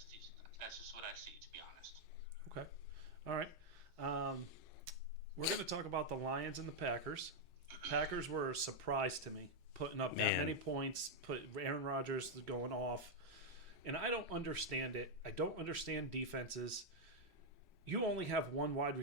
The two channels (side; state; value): both; normal; correlation -0.01